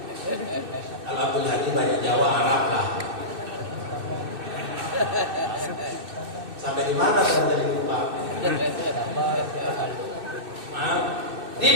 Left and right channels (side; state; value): left; late; 2.6 ms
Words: Kalau Abdul Hadi banyak Jawa, Arab lah. Sampai di mana saya jadi lupa?